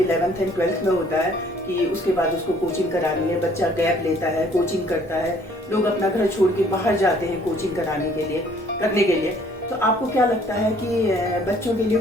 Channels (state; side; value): normal; both; correlation 0.59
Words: 11th एंड 12th में होता है कि उसके बाद उसको कोचिंग करानी है, बच्चा गैप लेता है, कोचिंग करता है, लोग अपना घर छोड़ के बाहर जाते हैं कोचिंग करने के लिए। तो आपको क्या लगता है कि बच्चों के लिए